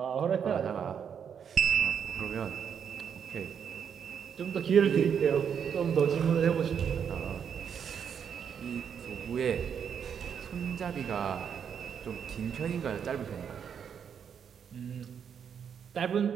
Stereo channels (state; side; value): quieter; left; 7.6 dB